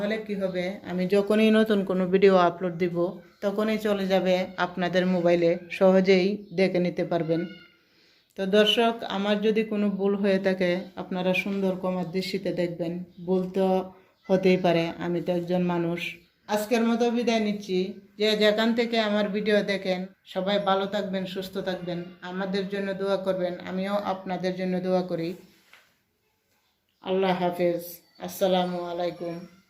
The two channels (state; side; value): identical; both; correlation 1.00